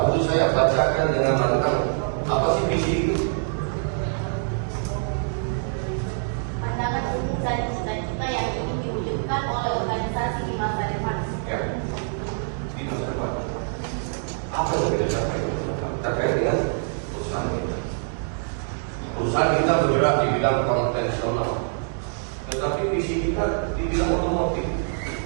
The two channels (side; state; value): left; silent; digital silence